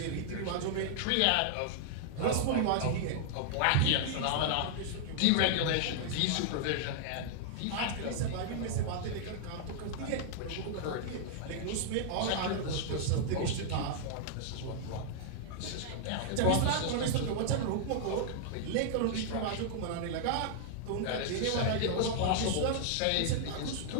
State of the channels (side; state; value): both; different; correlation -0.01